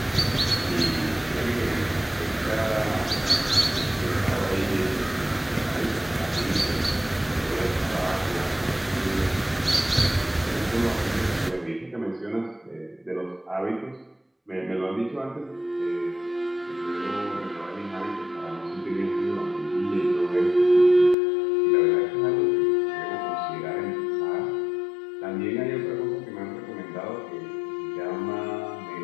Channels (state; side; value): drops out; right; at 21.2 s